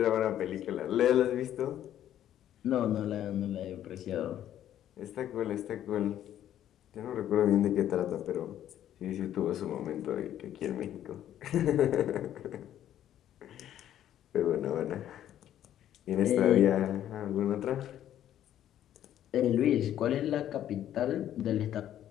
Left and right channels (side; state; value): right; quieter; 11.4 dB